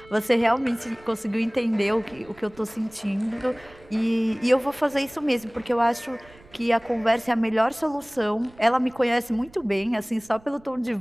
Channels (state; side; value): noise; right; rumble, 25 dB below the sound